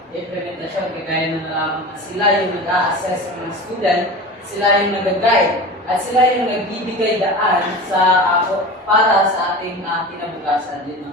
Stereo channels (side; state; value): both; normal; correlation 0.32